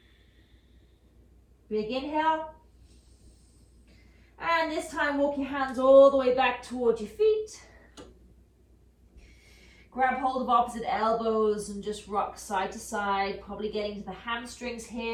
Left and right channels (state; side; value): identical; both; correlation 1.00